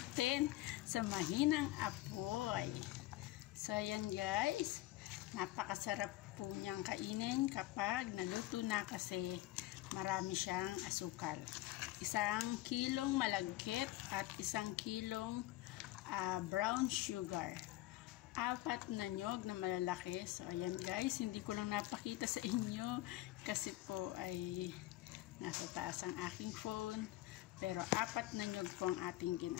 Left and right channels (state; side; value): quieter; right; 17.0 dB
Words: sa mahinang apoy. So ayan guys, napakasarap po niyang kainin kapag naluto na kasi marami siyang asukal. 1 kilong malagkit at 1 kilong brown sugar. 4 na nyog na malalaki. So ayan guys, hindi ko lang napakita sa inyo kasi po ay nasa taas ang aking phone. Pero 4 na nyog po ang ating